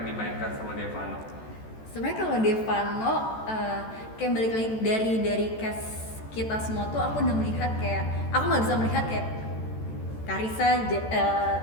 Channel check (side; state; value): right; late; 14 ms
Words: dimainkan sama Devano? Sebenarnya kalau Devano kayak balik lagi dari cast kita semua tuh aku udah melihat kayak aku nggak bisa melihat kayak Carissa,